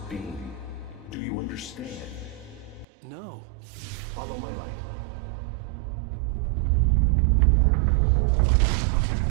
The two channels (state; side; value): drops out; left; at 2.9 s